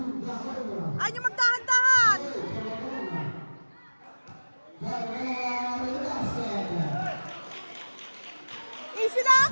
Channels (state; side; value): inverted; both; correlation -1.00